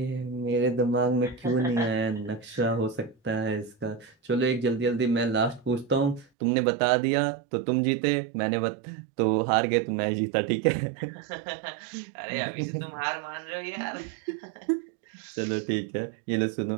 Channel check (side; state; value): left; drops out; at 6.2 s